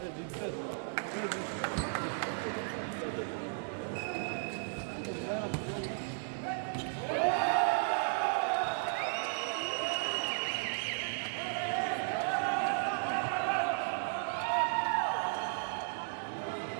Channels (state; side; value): silent; left; digital silence